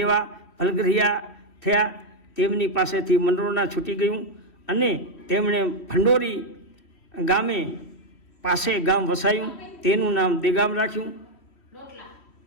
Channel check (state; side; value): late; right; 3.1 ms